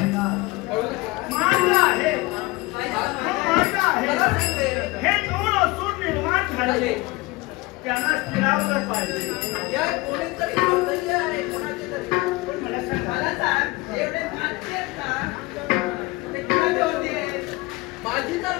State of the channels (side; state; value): right; quieter; 22.8 dB